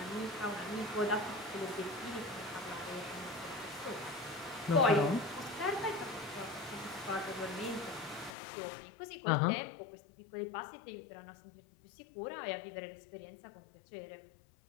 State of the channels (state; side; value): drops out; right; at 8.3 s